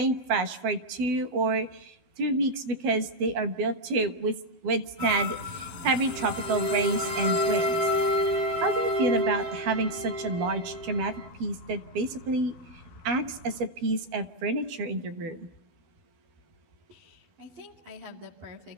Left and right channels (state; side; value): late; left; 12 ms